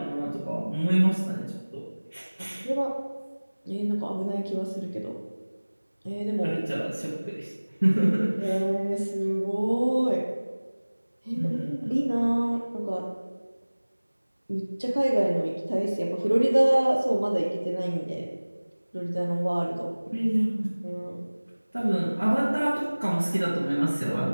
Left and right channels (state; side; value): inverted; both; correlation -1.00